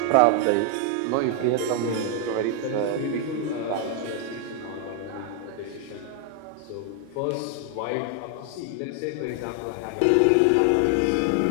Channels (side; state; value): both; different; correlation 0.00